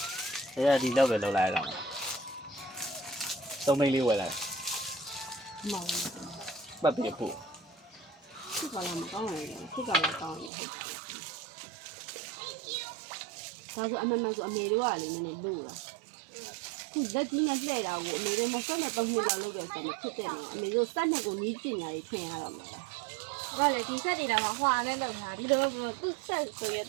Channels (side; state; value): left; drops out; at 10.5 s